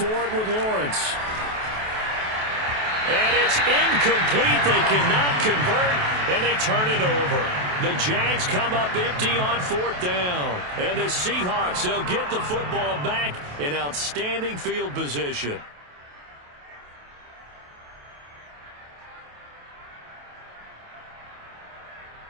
it with Lawrence. And it's incomplete. They cannot convert, and they turn it over. The Jags come up empty on fourth down. And the Seahawks, they'll get the football back in outstanding field position.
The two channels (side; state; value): left; late; 28 ms